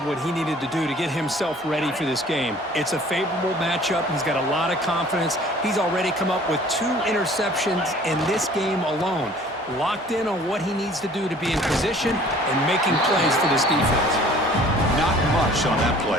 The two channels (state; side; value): normal; both; correlation 0.51